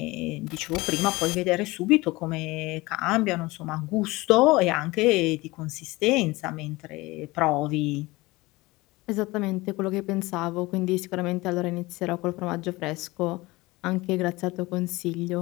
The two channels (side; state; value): right; quieter; 21.4 dB